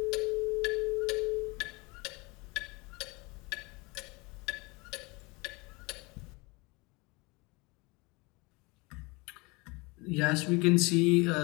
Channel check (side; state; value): right; quieter; 26.2 dB